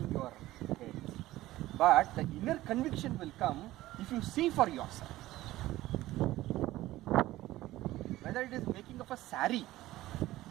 your head. But the inner conviction will come if you see for yourself. Whether it is making of a sari.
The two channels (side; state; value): left; quieter; 16.3 dB